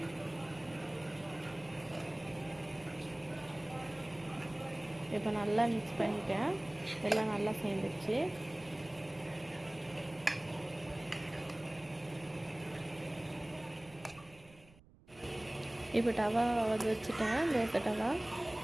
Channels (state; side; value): noise; right; rumble, 24 dB below the sound